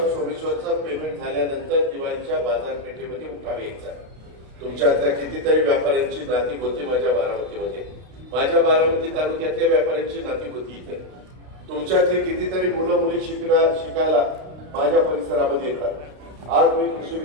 सोमेश्वरचं पेमेंट झाल्यानंतर दिवाळीच्या बाजारपेठेमध्ये उठाव यायचा. तुमच्यातल्या कितीतरी व्यापाऱ्यांची नाती होती माझ्या बारामतीमध्ये. माझ्या बारामती तालुक्यातल्या व्यापाऱ्यांची नाती होती इथे. तुमच्यातली कितीतरी मुलं मुली शिकायला माझ्या परिसरामध्ये येतात. आज मी कृषी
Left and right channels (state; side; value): late; left; 32 ms